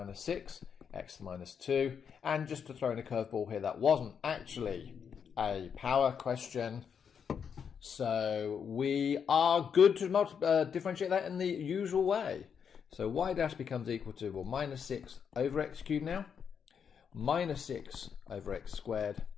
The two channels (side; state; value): right; quieter; 7.1 dB